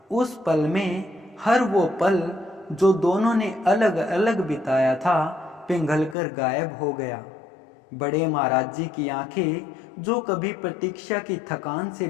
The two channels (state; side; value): drops out; right; at 6.2 s